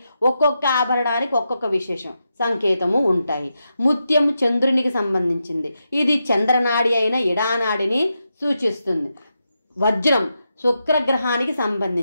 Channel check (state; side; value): inverted; both; correlation -0.86